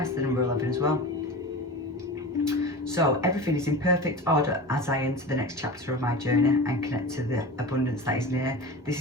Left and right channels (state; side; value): normal; both; correlation 0.31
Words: the number 11 as well. So everything is in perfect order as I enter the next chapter of my journey and connect to the abundance that is near. This